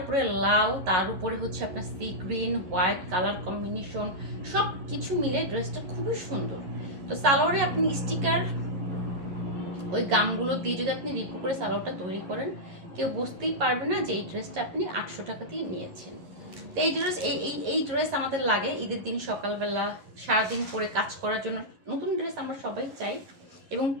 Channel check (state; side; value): late; left; 11 ms